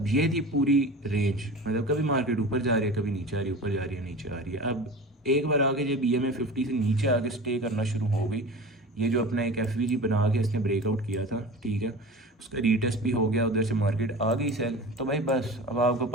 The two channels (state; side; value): normal; both; correlation 0.34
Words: ये थी पूरी रेंज, मतलब कभी मार्केट ऊपर जा रही है, कभी नीचे आ रही है, ऊपर जा रही है, नीचे आ रही है। अब एक बार आगे जब ईएमए 50 से नीचे आके स्टे करना शुरू हो गई, ये जो अपना एक एफवीजी बना के इसने ब्रेकआउट किया था, ठीक है, उसका रीटेस्ट भी हो गया, उधर से मार्केट आ गई सेल। तो भाई बस अब आपको